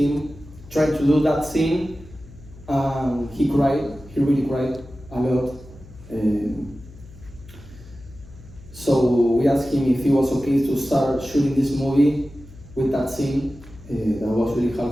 trying to do that scene. He cried. He really cried a lot. So we asked him if he was okay to start shooting this movie with that scene. That was really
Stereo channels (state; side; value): noise; left; hum, 19 dB below the sound